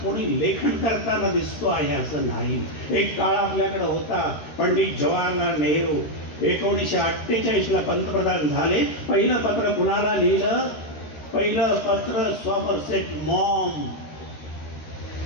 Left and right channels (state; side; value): late; right; 13 ms